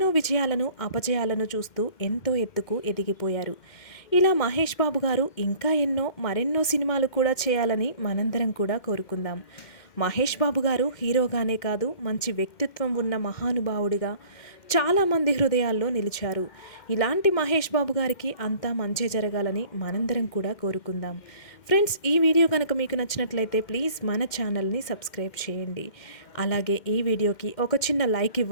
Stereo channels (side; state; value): right; late; 2.1 ms